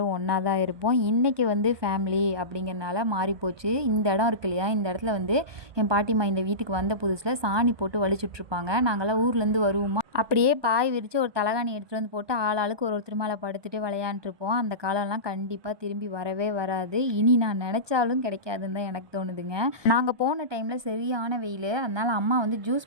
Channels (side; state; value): left; late; 1.2 ms